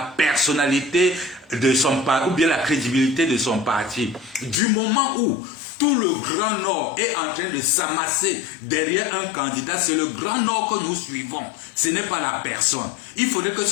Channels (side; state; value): right; drops out; at 4.6 s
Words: personnalité de son parti, ou bien la crédibilité de son parti. Du moment où tout le Grand Nord est en train de s'amasser derrière un candidat, c'est le Grand Nord que nous suivons. Ce n'est pas la personne. Il faudrait que